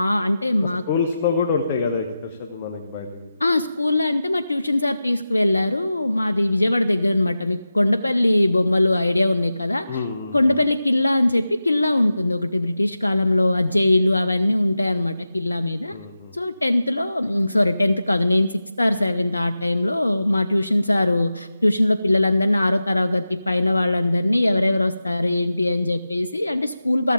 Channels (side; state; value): both; inverted; correlation -0.93